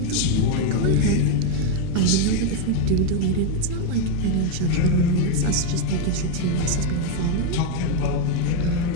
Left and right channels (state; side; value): different; both; correlation 0.02